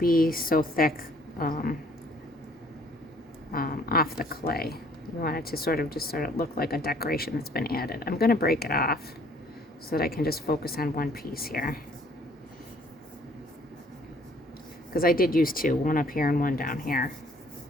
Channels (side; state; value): both; normal; correlation 0.59